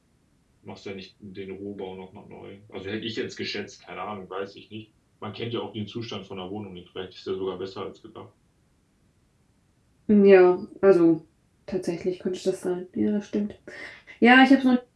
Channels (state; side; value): identical; both; correlation 1.00